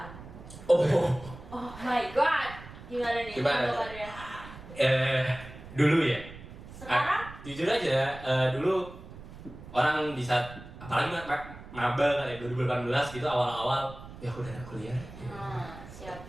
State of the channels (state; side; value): noise; right; rumble, 15 dB below the sound